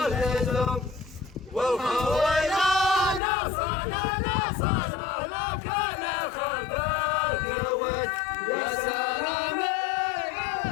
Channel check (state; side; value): drops out; right; at 3.2 s